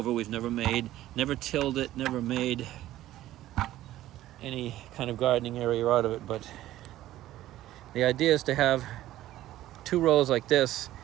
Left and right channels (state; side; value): quieter; left; 14.4 dB